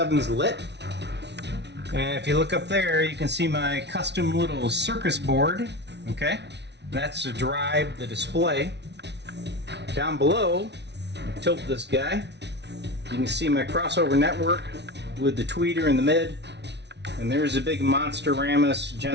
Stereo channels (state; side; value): late; left; 0.50 ms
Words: lit. And if you look up there, you can see my custom little circus board. Okay, that's to drive the display. Down below, tilt this guy, you can see my crossover network with the tweeter in the mid. And there's a big Monster-Ramus